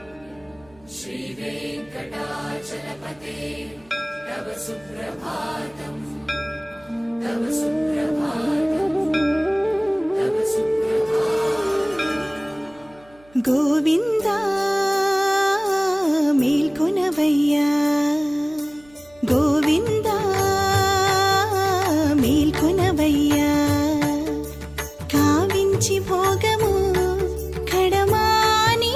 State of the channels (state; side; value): noise; right; hum, 29 dB below the sound